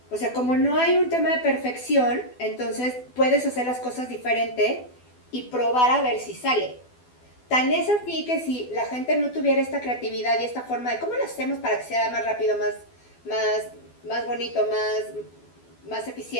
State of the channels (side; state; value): right; late; 12 ms